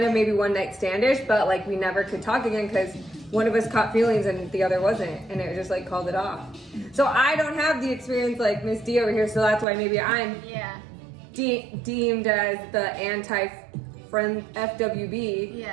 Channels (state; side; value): drops out; left; at 9.7 s